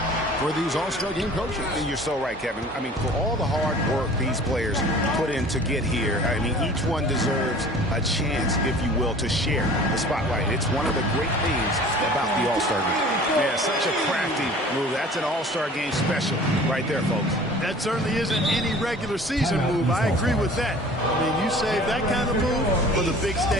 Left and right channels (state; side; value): normal; both; correlation 0.46